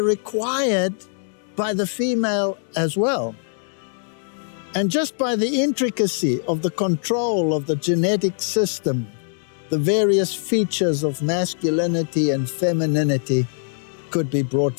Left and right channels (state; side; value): silent; right; digital silence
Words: required by the female as well. And just by the intricacy of the control of the genetic system, the various features of masculinity and femininity could be brought